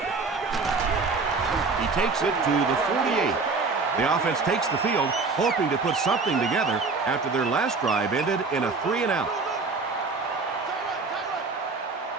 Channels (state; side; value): quieter; left; 4.2 dB